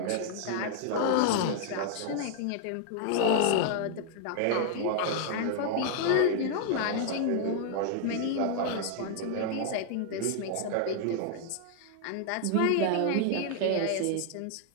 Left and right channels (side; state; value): both; different; correlation 0.00